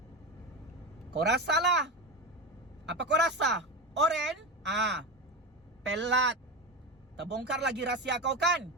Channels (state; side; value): normal; both; correlation 0.21